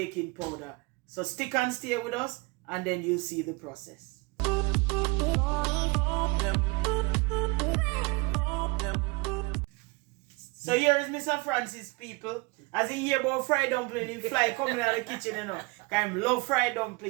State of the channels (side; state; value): left; quieter; 27.5 dB